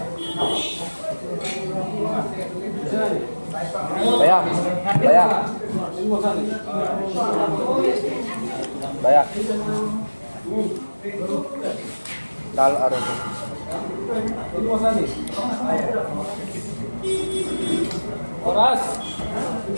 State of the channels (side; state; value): both; inverted; correlation -1.00